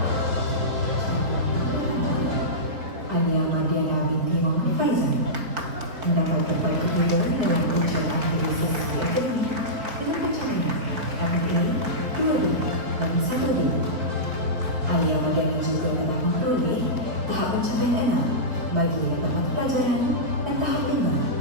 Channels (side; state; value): left; late; 4.4 ms